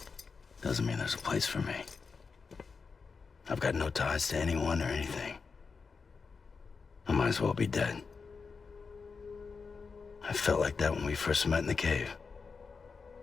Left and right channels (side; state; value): right; quieter; 5.0 dB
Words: Doesn't mean there's a place for me. I've got no ties to anyone or anything. I might as well be dead. I felt like that when we first met in the cave.